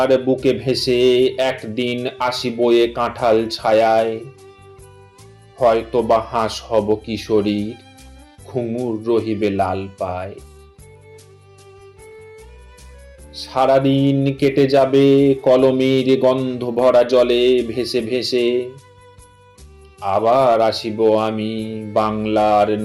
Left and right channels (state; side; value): identical; both; correlation 1.00